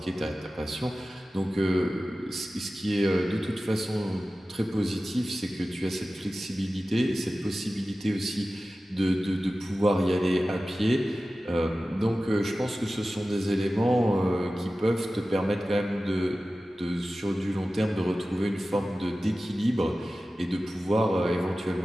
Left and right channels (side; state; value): both; normal; correlation 0.95